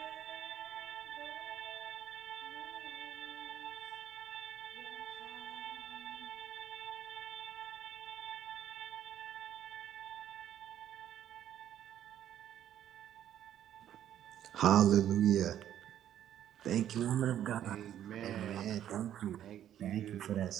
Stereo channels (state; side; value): quieter; left; 11.0 dB